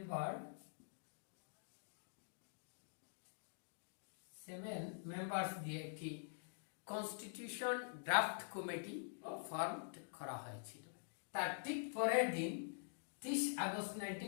মেম্বার্স দিয়ে একটি কনস্টিটিউশন ড্রাফট কমিটি ফর্ম করা হয়েছিল। তার ঠিক পরের দিন 30 আগস্ট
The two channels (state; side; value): silent; right; digital silence